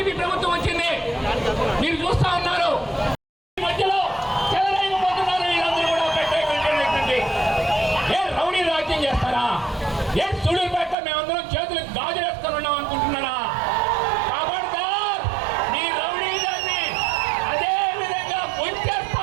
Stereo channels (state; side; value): drops out; left; at 11.0 s